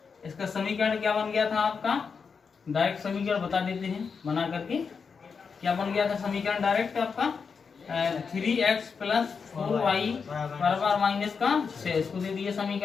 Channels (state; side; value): quieter; right; 5.6 dB